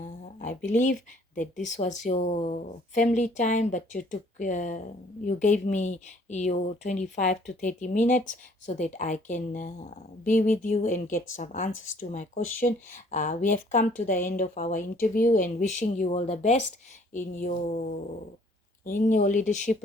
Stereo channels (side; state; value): both; normal; correlation 0.59